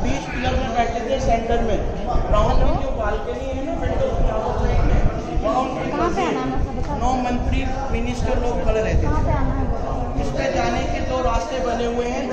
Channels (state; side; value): identical; both; correlation 1.00